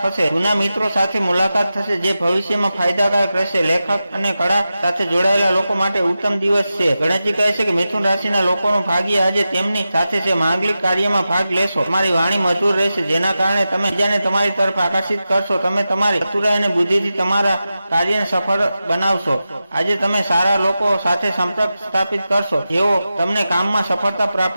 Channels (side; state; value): both; inverted; correlation -0.92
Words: થશે। જૂના મિત્રો સાથે મુલાકાત થશે જે ભવિષ્યમાં ફાયદાકારક રહેશે। લેખક અને કળા સાથે જોડાયેલા લોકો માટે ઉત્તમ દિવસ છે। ગણેશજી કહે છે કે મિથુન રાશિના લોકોનું ભાગ્ય આજે તેમની સાથે છે। માંગલિક કાર્યમાં ભાગ લેશો। તમારી વાણી મધુર રહેશે જેના કારણે તમે બીજાને તમારી તરફ આકર્ષિત કરશો। તમે તમારી ચતુરાઈ અને બુદ્ધિથી તમારા કાર્યને સફળ બનાવશો। આજે તમે સારા લોકો સાથે સંપર્ક સ્થાપિત કરશો જેઓ તમને કામમાં સફળતા